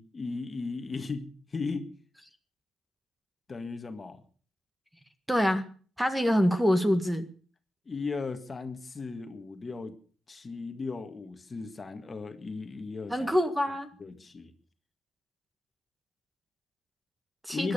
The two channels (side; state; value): both; normal; correlation 0.94